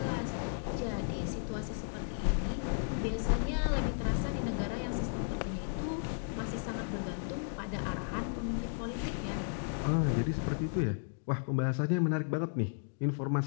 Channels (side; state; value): right; silent; digital silence